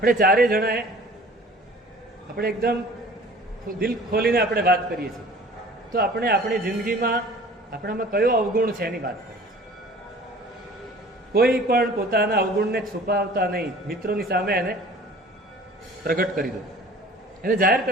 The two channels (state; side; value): normal; both; correlation 0.47